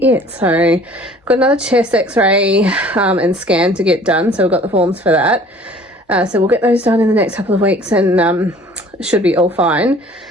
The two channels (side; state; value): both; normal; correlation 0.50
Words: it. So I've got another chest x-ray and scan to get done. So we've got the forms for that. So we'll get those done in the next couple of weeks, and it should be all fine.